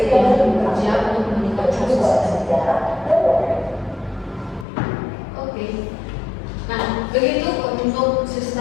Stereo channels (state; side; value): drops out; right; at 4.7 s